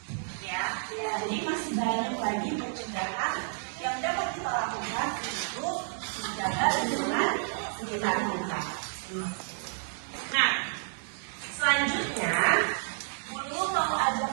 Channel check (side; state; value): left; silent; digital silence